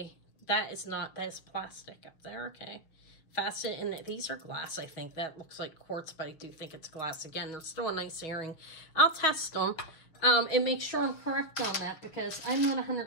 is plastic up there, okay. Faceted, and these are glass, I think. That looks like quartz, but I do think it's glass. Again, they're still a nice earring. I'll test them and make sure I'm correct on that, because I'm not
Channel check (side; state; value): right; late; 6.5 ms